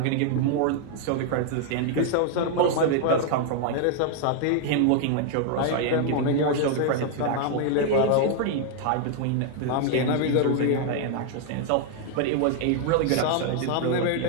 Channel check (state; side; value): different; both; correlation 0.00